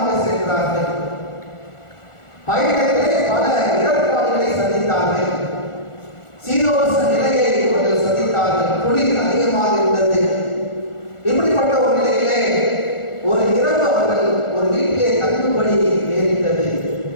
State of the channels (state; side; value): late; right; 1.4 ms